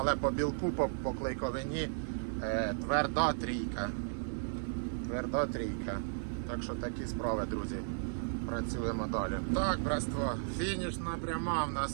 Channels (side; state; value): left; silent; digital silence